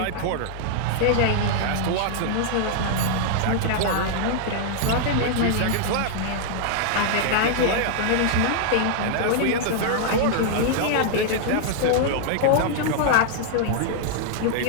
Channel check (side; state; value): both; different; correlation -0.01